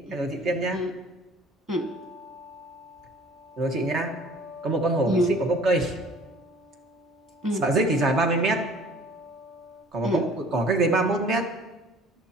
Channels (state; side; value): normal; both; correlation 0.51